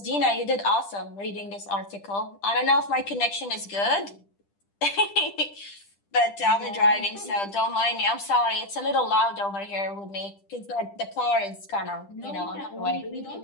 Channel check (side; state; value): right; late; 10 ms